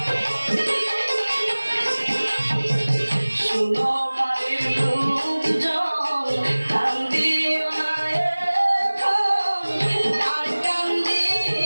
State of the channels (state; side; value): inverted; both; correlation -1.00